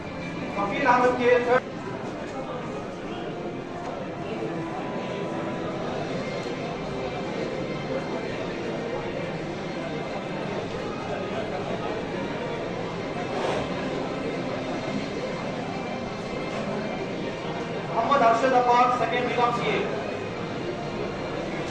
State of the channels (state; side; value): identical; both; correlation 1.00